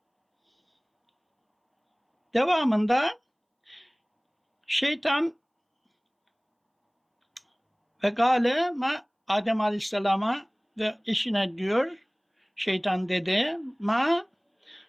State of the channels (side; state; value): both; identical; correlation 1.00